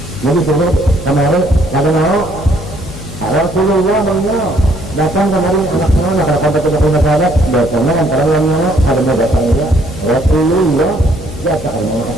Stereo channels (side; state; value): left; noise; hum, 13 dB below the sound